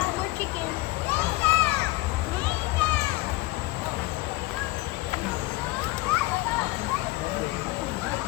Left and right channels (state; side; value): quieter; right; 20.4 dB